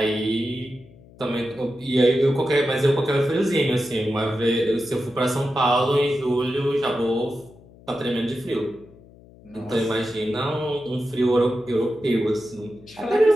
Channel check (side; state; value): left; noise; hum, 24 dB below the sound